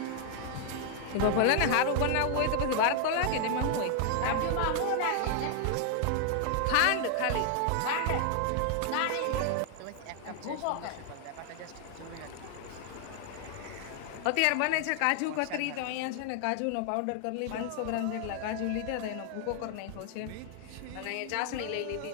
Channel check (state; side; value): different; both; correlation 0.00